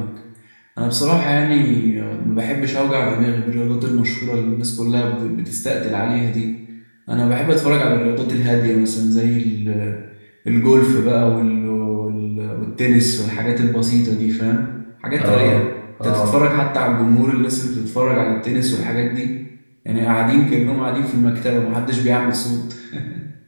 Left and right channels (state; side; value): inverted; both; correlation -1.00